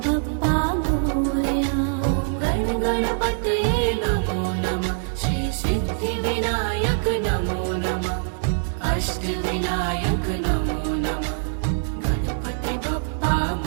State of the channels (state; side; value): silent; left; 63 dB below the other